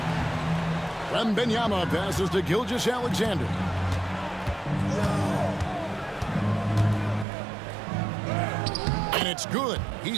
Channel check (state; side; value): drops out; left; at 7.2 s